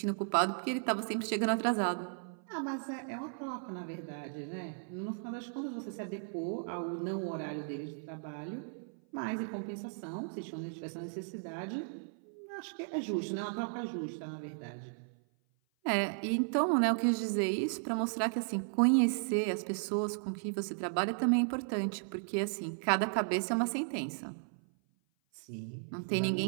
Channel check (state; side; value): silent; left; 54 dB below the other